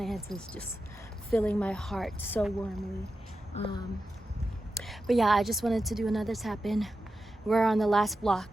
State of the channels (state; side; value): normal; both; correlation 0.91